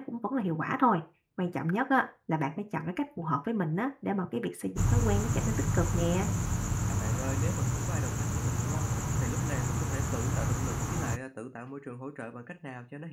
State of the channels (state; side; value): identical; both; correlation 1.00